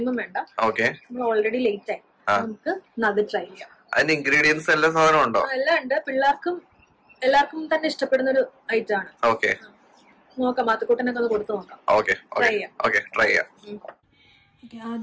വേണ്ട. ഓക്കെ, നമ്മൾ ഓൾറെഡി ലേറ്റ് ആയി, നമുക്ക് അത് ട്രൈ ചെയ്യാം. അതിന്റെ ഇൻഗ്രീഡിയൻസ് എല്ലാ സാധനം ഉണ്ടോ? എല്ലാം ഉണ്ട്. എല്ലാവർക്കും തന്നെ ഇഷ്ടപ്പെടുന്ന ഒരു ഐറ്റം ആണ്. ഓക്കെ, നോക്കാം, മാത്തുക്കൂട്ടനൊക്കെ ഒന്ന് കൊടുത്തു നോക്കാം. ട്രൈ ചെയ്യാം.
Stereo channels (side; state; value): both; identical; correlation 1.00